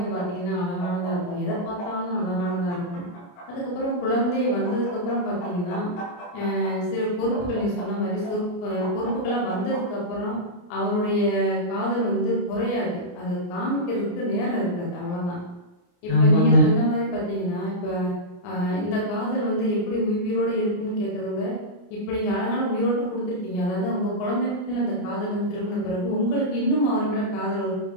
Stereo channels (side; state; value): right; late; 29 ms